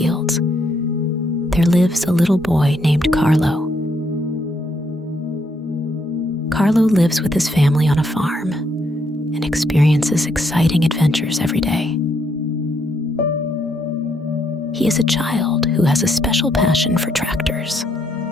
there lives a little boy named Carlo. Carlo lives with his family on a farm and experiences exciting adventures every day. He is a child who has a special passion for tractors.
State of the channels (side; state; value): both; normal; correlation 0.74